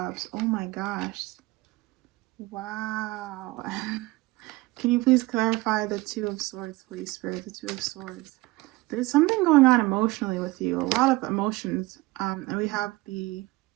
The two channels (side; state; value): left; quieter; 20.9 dB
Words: Oh my gosh. Wow. Can you please clarify the Two of Swords, please, Spirit? The Two of Swords. There's something going on emotionally with you. A lot of emotions. And we have the